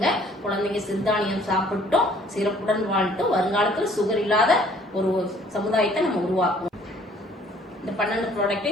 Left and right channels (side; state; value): both; normal; correlation 0.58